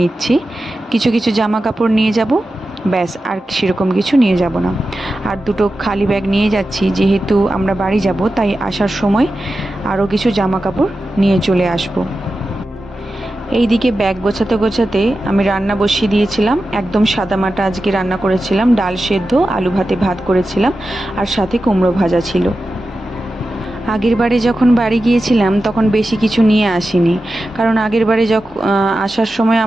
কিছু কিছু জামা কাপড় নিয়ে যাব, ব্যাস, আর সেরকম কিছু নিয়ে যাব না। আর দুটো খালি ব্যাগ নিয়ে যাচ্ছি, যেহেতু আমরা বাড়ি যাব, তাই আসার সময় আরও কিছু জামা কাপড় নিয়ে চলে আসবো। এইদিকে ব্যাগ গোছাতে গোছাতে আমি রান্না বসিয়ে দিয়েছিলাম। একদম সাদামাটা আজকে রান্না করেছিলাম, ডাল সেদ্ধ, আলু ভাতে ভাত করেছিলাম, আর সাথে কুমড়ো ভাজা ছিল। আগের বারে যখন বাড়ি গিয়েছিলাম তখন বেশি কিছু নিয়ে আসিনি, কারণ আগের বারে যখন আসার সময়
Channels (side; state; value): both; normal; correlation 0.92